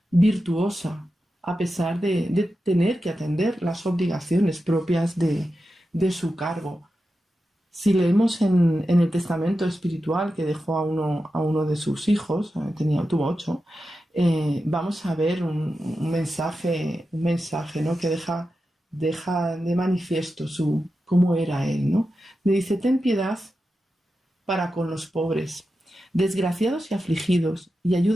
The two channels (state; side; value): normal; both; correlation 0.91